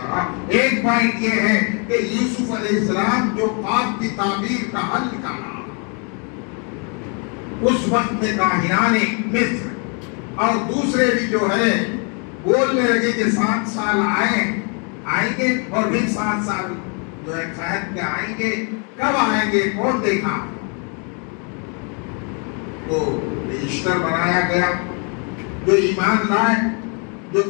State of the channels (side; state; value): right; quieter; 36.8 dB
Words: رہا. ایک پوائنٹ یہ ہے کہ یوسف علیہ السلام جو خواب کی تعبیر کا حل نکالا، اس وقت میں کاہنان مصر اور دوسرے بھی جو ہے بولنے لگے کہ 7 سال آئیں گے اور پھر 7 سال جو ہے قحط کے آئیں گے. کب آئیں گے؟ کون دیکھا؟ تو رجسٹر بنایا گیا. جو ایمان لائے، جو